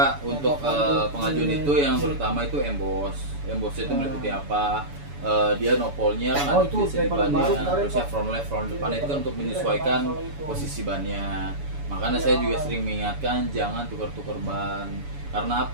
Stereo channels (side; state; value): left; late; 7.0 ms